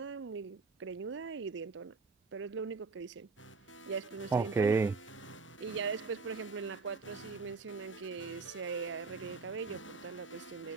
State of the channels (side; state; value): left; quieter; 4.3 dB